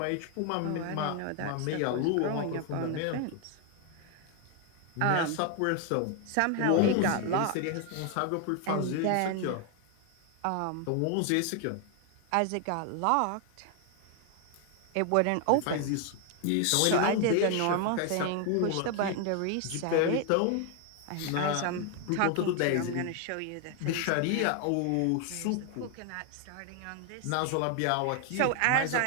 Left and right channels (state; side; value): different; both; correlation 0.01